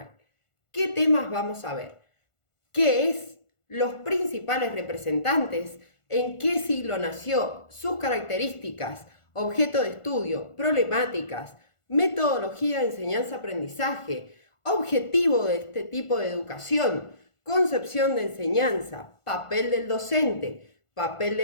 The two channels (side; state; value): right; late; 1.5 ms